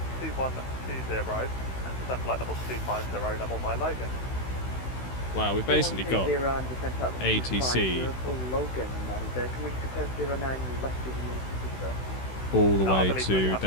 2120, and descend flight level 250, level by Logan. Wow, we've basically got ATC Logan, and can we compare 09 left of you? all the No, I way believe we to have to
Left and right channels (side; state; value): right; late; 16 ms